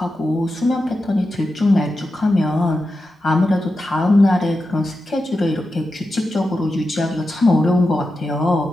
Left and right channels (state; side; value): normal; both; correlation 0.90